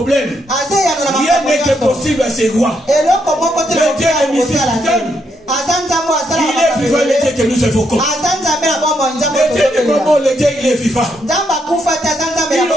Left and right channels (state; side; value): normal; both; correlation 0.77